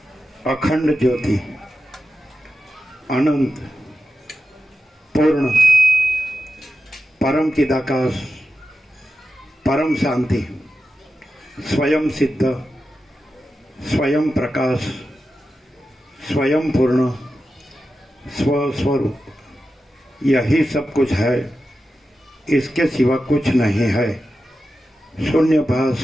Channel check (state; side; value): normal; both; correlation 0.91